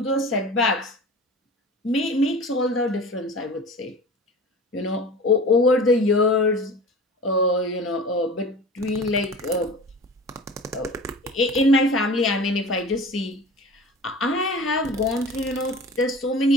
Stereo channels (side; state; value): both; normal; correlation 0.38